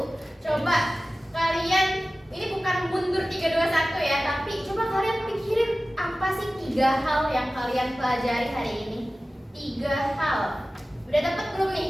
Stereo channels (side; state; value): both; normal; correlation 0.96